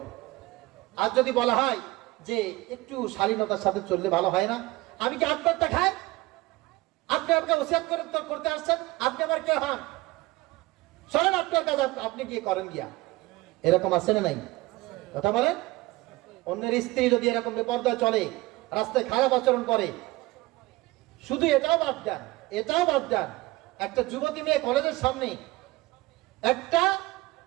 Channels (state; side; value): quieter; left; 20.3 dB